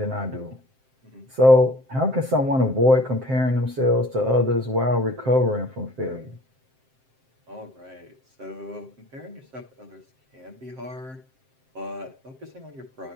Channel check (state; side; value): late; left; 7.6 ms